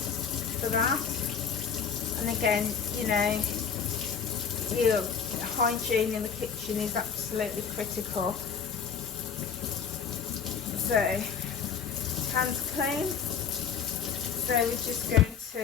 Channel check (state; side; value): quieter; right; 6.8 dB